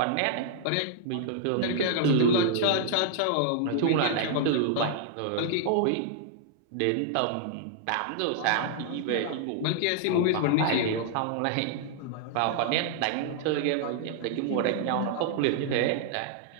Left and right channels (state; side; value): different; both; correlation -0.01